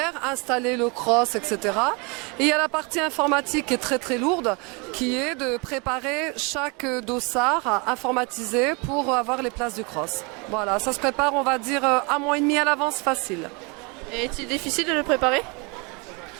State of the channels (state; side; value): quieter; left; 30.5 dB